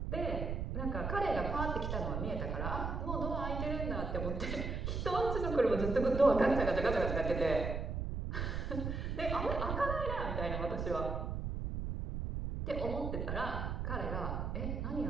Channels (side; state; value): right; noise; rumble, 2 dB below the sound